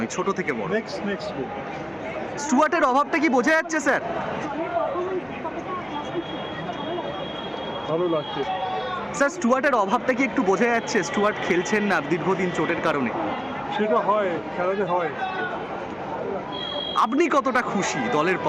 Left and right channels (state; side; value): identical; both; correlation 1.00